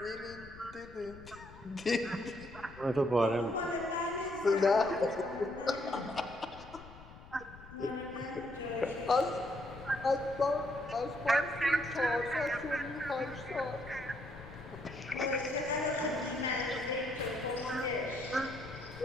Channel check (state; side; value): noise; left; rumble, 18 dB below the sound